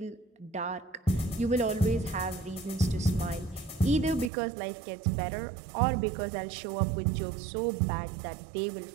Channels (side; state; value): left; drops out; at 4.3 s